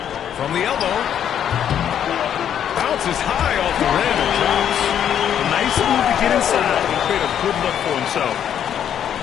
From the elbow. Bounces high off the rim and drops. Nice move to get inside and create a good look for himself.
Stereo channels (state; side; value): quieter; right; 9.4 dB